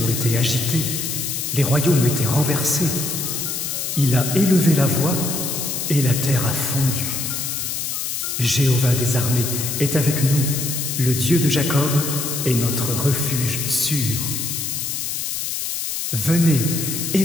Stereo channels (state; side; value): noise; left; hiss, 3 dB below the sound